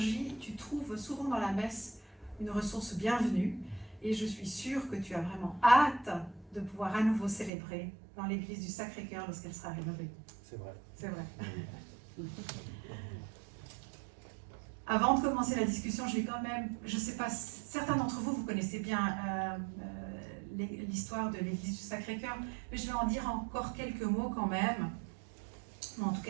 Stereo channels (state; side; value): drops out; left; at 7.5 s